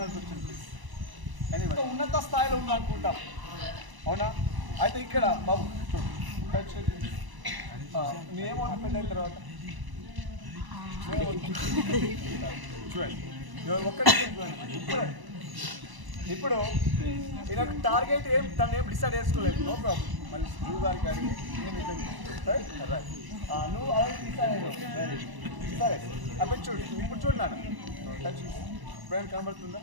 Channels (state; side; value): late; left; 1.0 ms